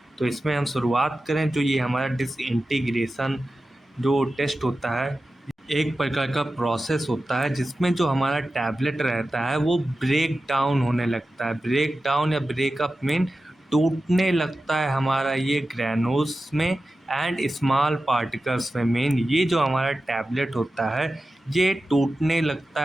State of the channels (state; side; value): normal; both; correlation 0.93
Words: तो इसमें हम शुरुआत करें। जो ये हमारा डिसइंटीग्रेशन जो टेस्ट होता है, एक प्रकार का प्रोसेस होता है जिसमें जो हमारा टैबलेट रहता है वो ब्रेक डाउन होने लगता है। ब्रेक डाउन या ब्रेकअप मीन टूटने लगता है हमारा ये ग्रैनुल्स में एंड स्मॉल पार्टिकल्स में। मेन ये जो हमारा टैबलेट होता है ये टूटने लगता